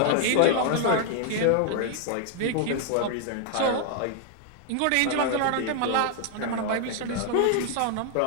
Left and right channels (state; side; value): different; both; correlation 0.00